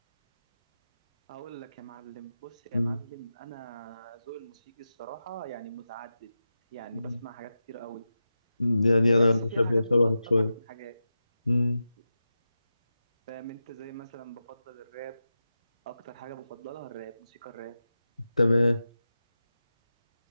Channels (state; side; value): inverted; both; correlation -0.92